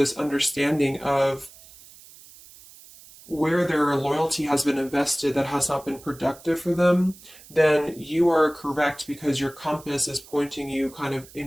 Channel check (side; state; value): right; noise; hiss, 21 dB below the sound